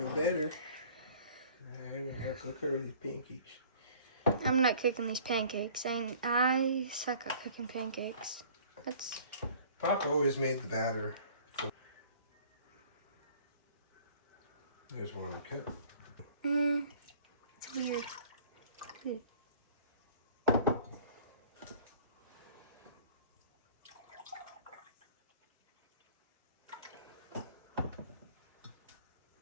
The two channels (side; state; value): both; inverted; correlation -0.50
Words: better. I'm gonna have to cook her these pancakes. I'm not cooking these pancakes. I suck at cooking pancakes. Papa always made the batter. There's one more cup. It's weird.